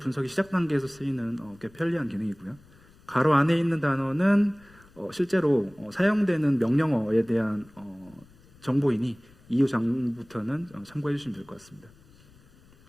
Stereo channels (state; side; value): noise; left; rumble, 26 dB below the sound